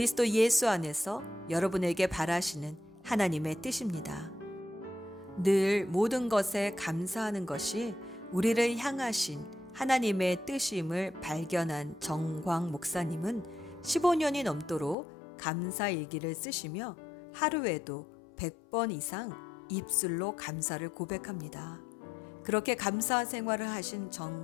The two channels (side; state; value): right; drops out; at 15.0 s